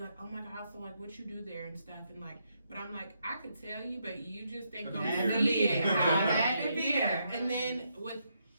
oh my God, so what you do there and stuff, and but I'm like, I could tell you, but you just ain't gonna Had to see be it. there. How Had to be yeah. there. And then with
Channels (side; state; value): both; inverted; correlation -0.79